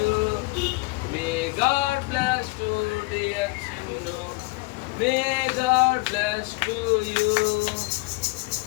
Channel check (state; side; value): quieter; right; 25.7 dB